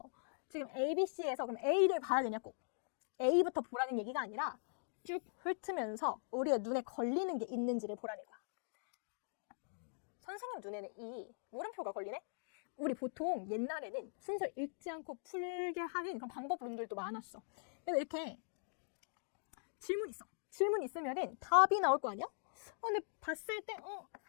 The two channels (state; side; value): silent; right; digital silence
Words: 지금 A, B, C에서 그럼 A를 봐야 되냐 꼭. A부터 보라는 얘기가 아니라 쭉 훑으면서 우리의 눈에 걸리는 게 있는지를 보라는 거야. 선생님 눈에는 이 물음표가 걸리네? 우리 보통 옛날에는 순서 읽지 않고 풀게 하는 그런 방법론들도 많았어. 그래서 이렇게 질문 있어. 질문 있으면은 답이 나올 거 아니야? 근데 봤을 때